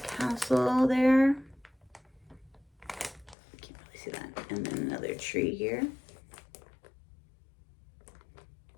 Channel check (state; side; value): drops out; right; at 3.4 s